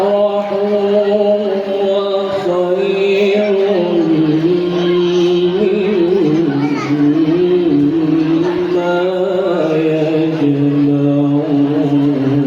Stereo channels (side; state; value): both; identical; correlation 1.00